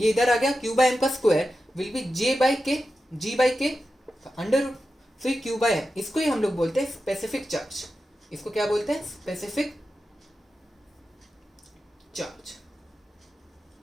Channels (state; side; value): normal; both; correlation 0.91